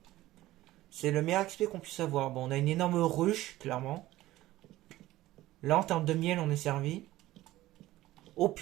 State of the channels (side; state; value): left; quieter; 16.3 dB